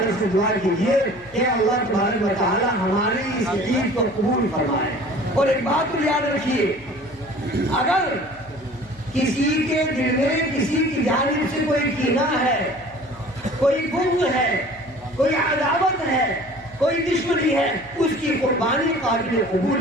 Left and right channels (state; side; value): noise; left; hum, 24 dB below the sound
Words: سے دعا کیجیے کہ اللہ تبارک و تعالیٰ ہماری اس عید کو قبول فرمائے۔ اور ایک بات کو یاد رکھیے، اگر کسی کے دل میں کسی کی جانب سے کوئی کینہ ہے، کوئی بغض ہے، کوئی عداوت ہے، کوئی دشمنی ہے، اس کی قربانی قابل